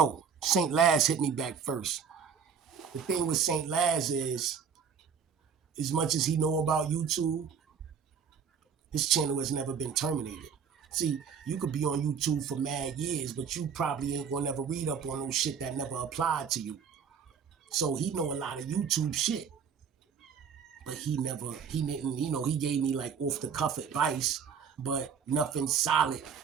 St. Laz hit me back first. The thing with St. Laz is, as much as he know about YouTube, his channel has never been terminated. See, you could be on YouTube for mad years, but you probably ain't gonna never read up on no shit that never applied to you. So he know a lot of YouTube shit, but he didn't, you know, he gave me like off the cuff advice, but nothing solid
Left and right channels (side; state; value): left; quieter; 6.8 dB